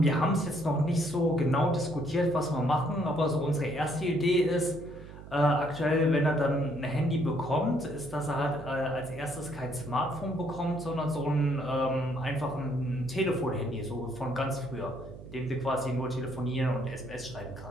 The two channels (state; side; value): noise; right; hum, 15 dB below the sound